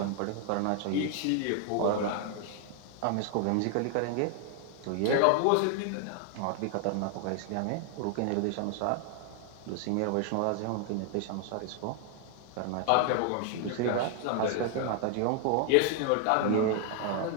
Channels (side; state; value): both; different; correlation 0.00